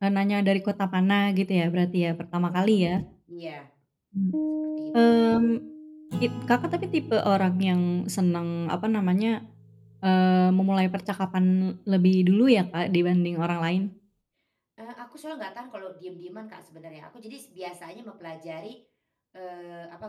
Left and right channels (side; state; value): both; identical; correlation 1.00